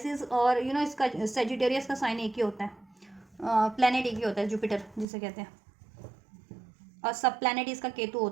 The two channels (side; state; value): left; drops out; at 5.1 s